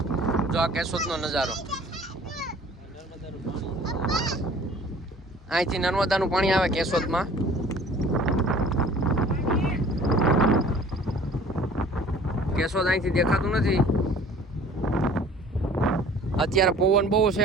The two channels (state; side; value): normal; both; correlation 0.49